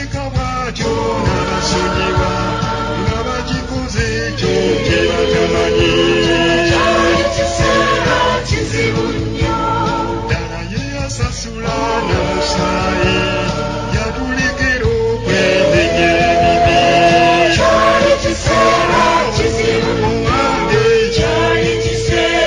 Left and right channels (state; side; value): identical; both; correlation 1.00